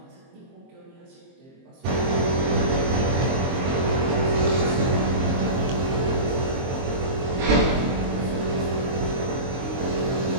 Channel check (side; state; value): left; late; 23 ms